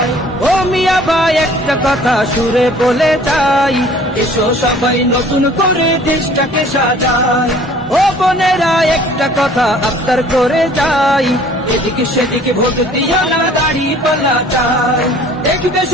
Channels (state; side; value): normal; both; correlation 0.52